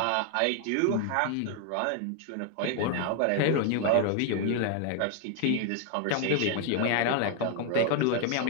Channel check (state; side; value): different; both; correlation 0.00